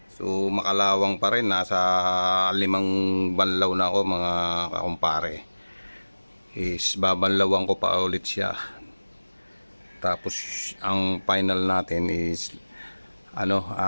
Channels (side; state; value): both; inverted; correlation -1.00